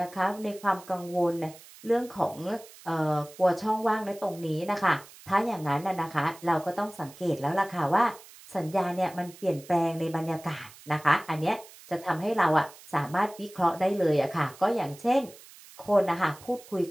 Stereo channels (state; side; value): noise; right; hiss, 20 dB below the sound